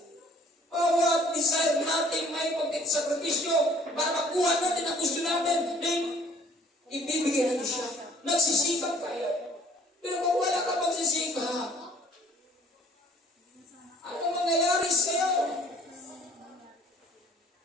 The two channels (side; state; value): both; normal; correlation 0.55